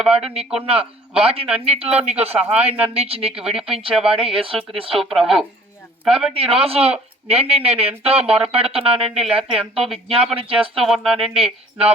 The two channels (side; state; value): both; normal; correlation 0.52